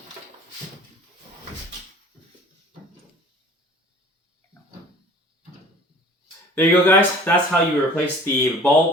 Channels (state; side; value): normal; both; correlation 0.47